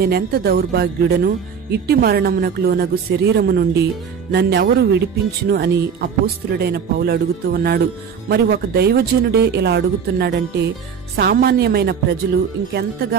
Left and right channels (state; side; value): quieter; left; 6.9 dB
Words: దౌర్భాగ్యుడను, ఇట్టి మరణమునకు లోనగు శరీరము నుండి నన్నెవరు విడిపించును అని అపోస్తులుడైన పౌలు అడుగుతూ ఉన్నాడు. మరి ఒక దైవజనుడే ఇలా అడుగుతున్నాడంటే సామాన్యమైన ప్రజలు